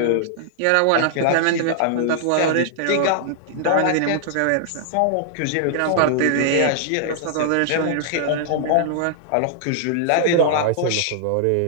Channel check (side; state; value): both; different; correlation -0.01